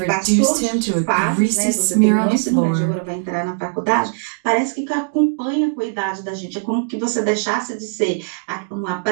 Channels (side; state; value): left; silent; digital silence